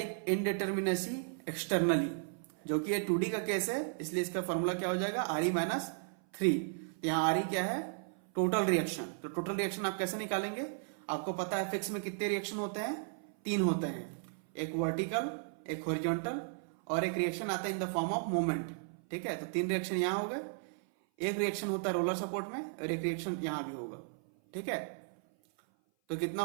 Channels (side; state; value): left; silent; 54 dB below the other